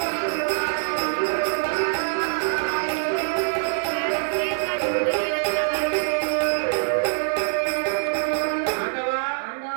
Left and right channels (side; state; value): left; silent; 63 dB below the other